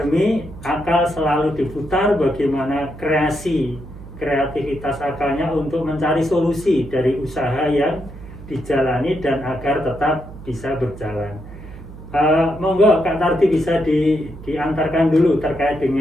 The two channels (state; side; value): noise; right; hum, 15 dB below the sound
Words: akal selalu diputar bagaimana kreativitas akalnya untuk mencari solusi dari usaha yang dijalani dan agar tetap bisa berjalan. Monggo Kak Tardi bisa diantarkan dulu terkait